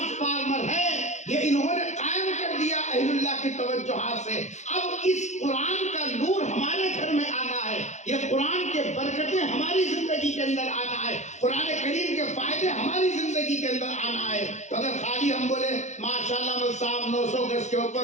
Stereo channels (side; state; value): right; late; 0.34 ms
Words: ہے، یہ انہوں نے قائم کر دیا اہل اللہ کی توجہات سے۔ اب اس قرآن کا نور ہمارے گھر میں آنا ہے، یہ قرآن کے برکتیں ہماری زندگی کے اندر آنا ہے، قرآن کریم کے فائدے ہماری زندگی کے اندر آنا ہے۔ تو اگر خالی ہم بولے ماشاءاللہ مول صاحب 900 گز کے